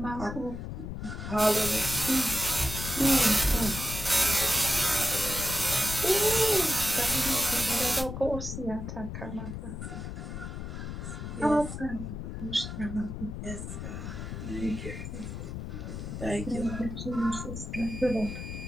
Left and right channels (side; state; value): left; noise; rumble, 7 dB below the sound